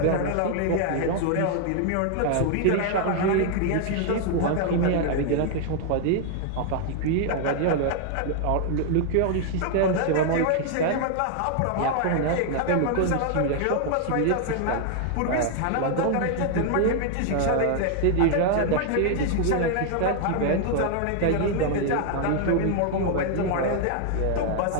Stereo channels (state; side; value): different; both; correlation 0.00